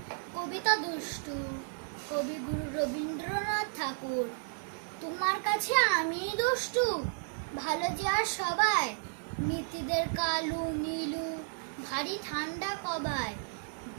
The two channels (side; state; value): left; silent; 56 dB below the other